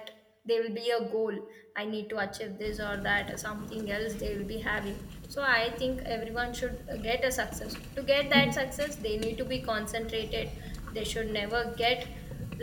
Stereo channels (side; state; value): both; identical; correlation 1.00